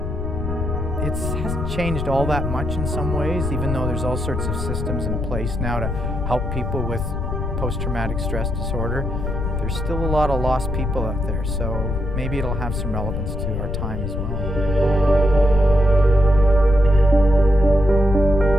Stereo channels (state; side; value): noise; left; rumble, 3 dB below the sound